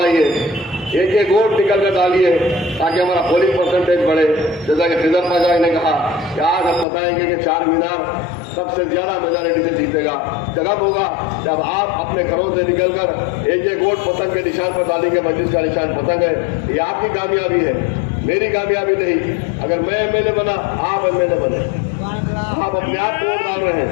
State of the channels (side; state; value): right; drops out; at 6.9 s